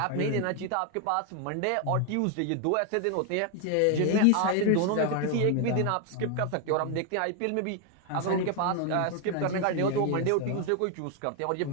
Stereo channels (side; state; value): both; different; correlation 0.00